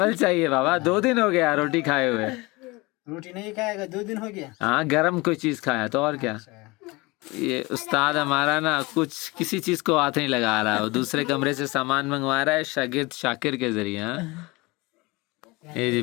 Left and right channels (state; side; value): quieter; right; 23.9 dB